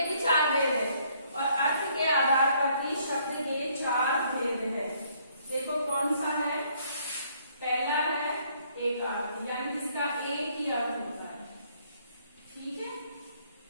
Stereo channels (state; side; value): inverted; both; correlation -0.66